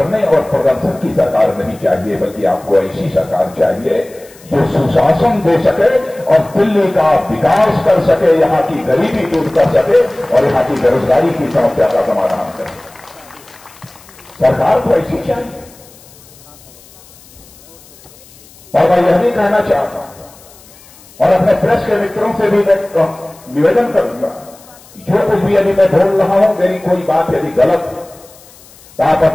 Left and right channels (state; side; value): noise; left; hiss, 24 dB below the sound